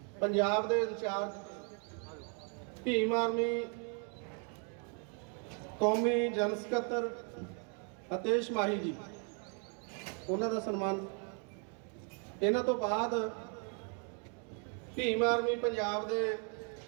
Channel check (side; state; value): left; quieter; 38.3 dB